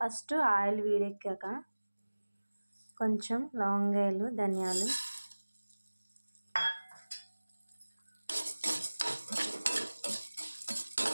ఆయిల్ వేడెక్కాక కొంచెం లవంగాలు, ధనియాలు,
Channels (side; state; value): both; inverted; correlation -1.00